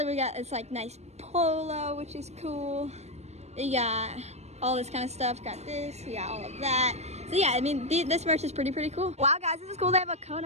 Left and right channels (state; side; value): late; left; 0.32 ms